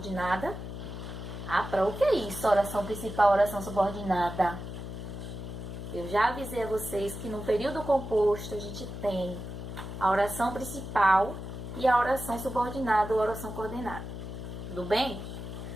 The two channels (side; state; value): left; noise; hum, 8 dB below the sound